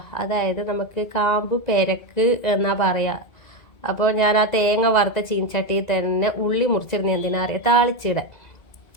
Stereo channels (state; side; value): late; right; 1.9 ms